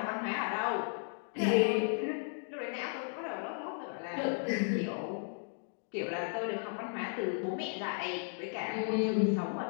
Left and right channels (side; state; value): right; silent; 54 dB below the other